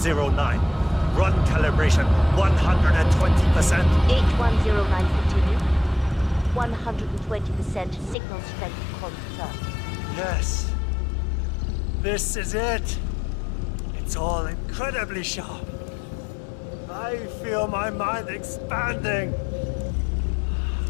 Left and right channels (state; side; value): drops out; right; at 8.2 s